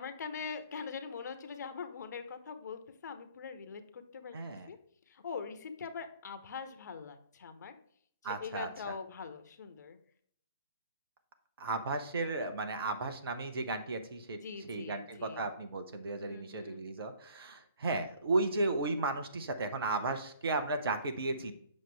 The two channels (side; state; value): both; inverted; correlation -0.54